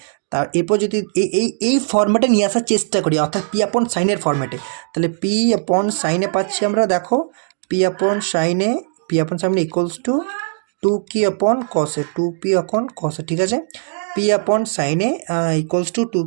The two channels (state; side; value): silent; left; digital silence